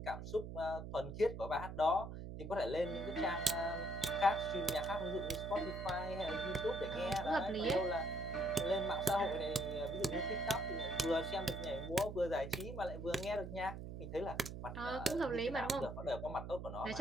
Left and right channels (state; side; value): noise; right; hum, 8 dB below the sound